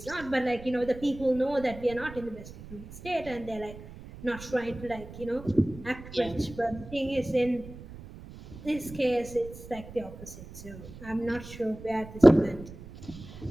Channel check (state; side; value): noise; right; rumble, 15 dB below the sound